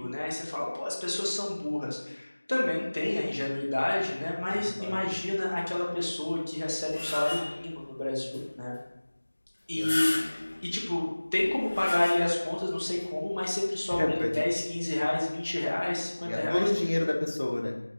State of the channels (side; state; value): both; inverted; correlation -1.00